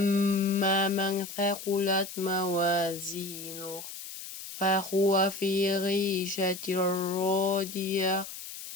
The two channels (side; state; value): left; noise; hiss, 11 dB below the sound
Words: من ثقلت موازينه فهو في عيشة راضية.